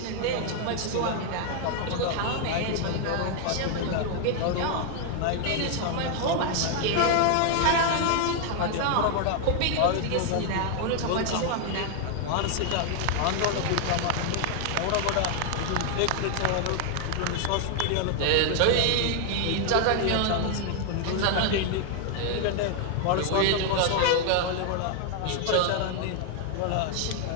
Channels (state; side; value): different; both; correlation 0.00